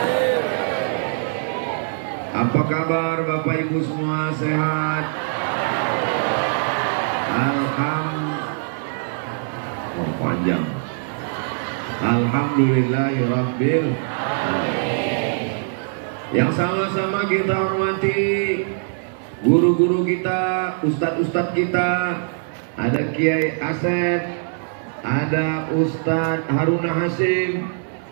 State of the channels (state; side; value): silent; left; 56 dB below the other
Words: Apa kabar Bapak Ibu semua, sehat? Panjang. Alhamdulillahirabbil alamin. Yang sama-sama kita hormati guru-guru kita, ustadz-ustadz kita. Ada Kiai Asep, ada Ustadz Haruna Hasim,